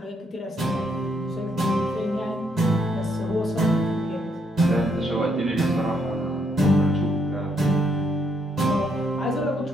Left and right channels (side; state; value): both; normal; correlation 0.74